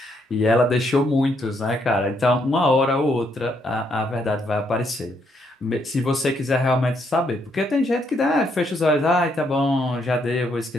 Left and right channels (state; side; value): normal; both; correlation 0.74